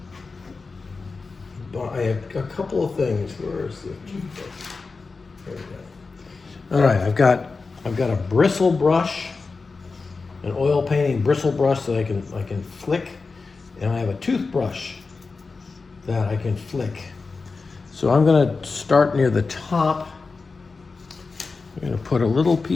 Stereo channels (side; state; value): right; quieter; 4.2 dB